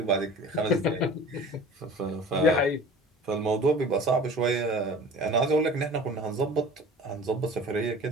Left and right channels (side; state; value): both; normal; correlation 0.42